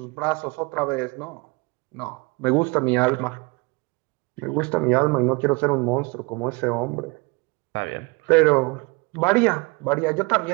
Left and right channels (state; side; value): quieter; left; 27.4 dB